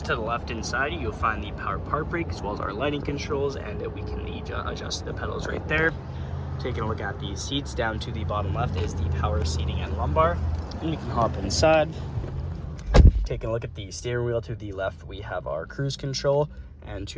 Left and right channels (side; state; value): both; identical; correlation 1.00